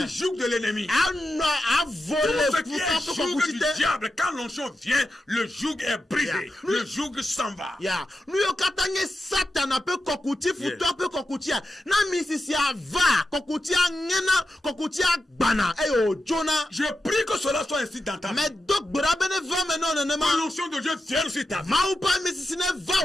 du joug de l'ennemi. Tout ce qui est joug du diable, quand l'onction vient, le joug est brisé. Le joug s'en va. Satan peut kokuti futo peut kokutia na misisia va kokutia ngena kokutia bana eyo Jonah. Je prie que cela soit ainsi dans ta vie. Mais donc brabene va maintenant ne ma l'onction de Dieu vienne sur ta vie. Ma ou pas misisine va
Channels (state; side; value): normal; both; correlation 0.90